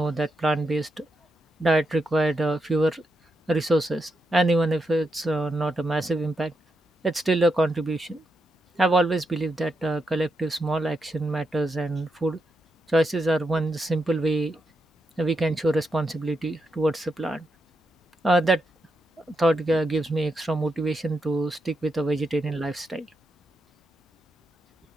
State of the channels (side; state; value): both; normal; correlation 0.84